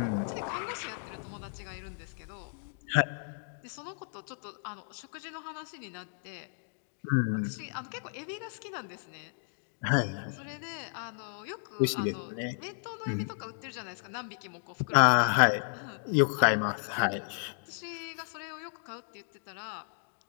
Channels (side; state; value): right; silent; digital silence